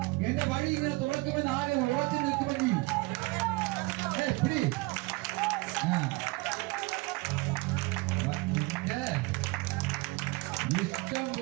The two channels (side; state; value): left; quieter; 23.9 dB